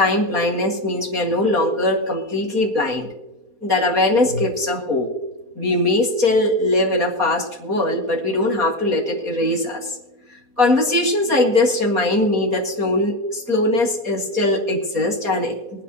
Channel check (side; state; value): left; late; 4.2 ms